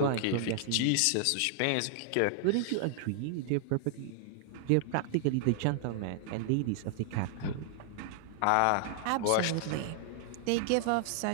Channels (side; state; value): both; different; correlation -0.01